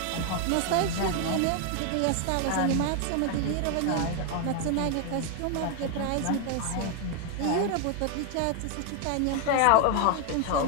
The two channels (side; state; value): both; different; correlation 0.00